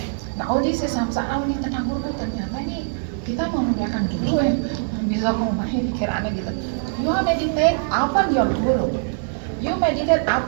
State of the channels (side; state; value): left; silent; digital silence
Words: Nah, this is samsara ini tentang guru ternyata ini kita mau memuliakan guru bisa memahami pikirannya gitu. You meditate upon your guru. You meditate